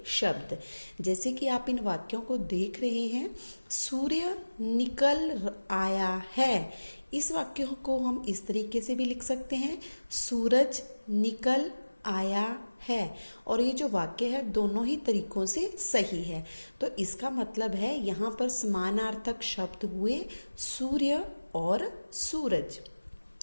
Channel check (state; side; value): inverted; both; correlation -1.00